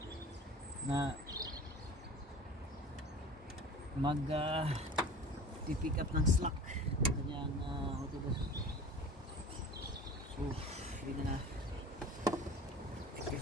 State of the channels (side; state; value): both; normal; correlation 0.40